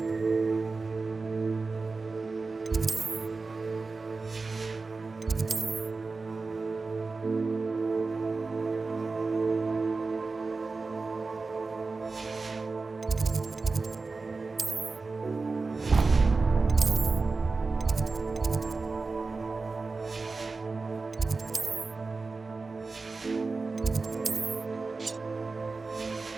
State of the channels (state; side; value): quieter; left; 4.0 dB